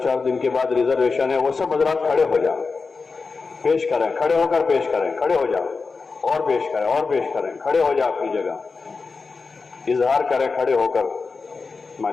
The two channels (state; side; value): quieter; right; 4.5 dB